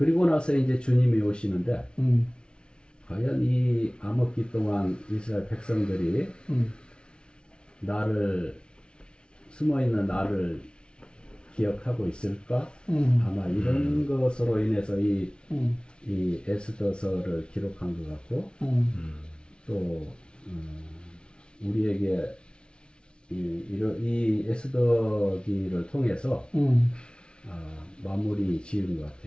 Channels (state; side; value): late; right; 0.056 ms